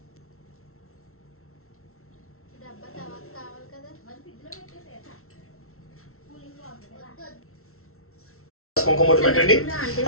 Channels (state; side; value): late; right; 0.63 ms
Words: డబ్బా తర్వాత కావాలి కదా. కుంకుమొట్టు పెట్టండి.